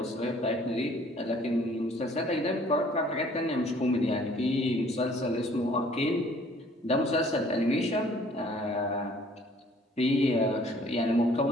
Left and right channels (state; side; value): normal; both; correlation 0.57